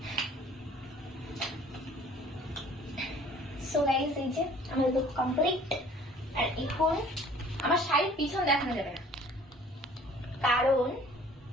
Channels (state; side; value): normal; both; correlation 0.52